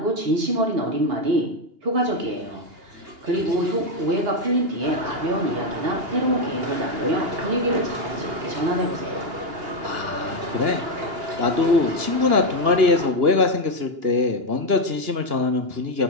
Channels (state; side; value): late; left; 2.9 ms